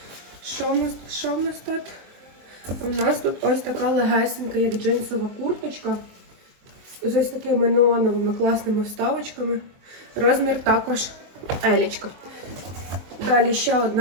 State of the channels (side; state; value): left; late; 23 ms